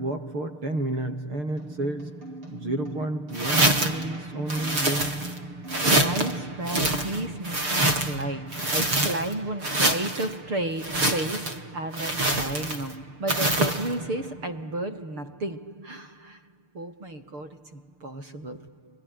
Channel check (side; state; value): left; late; 6.7 ms